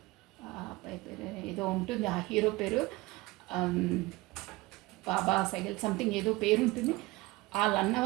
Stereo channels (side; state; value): left; quieter; 21.3 dB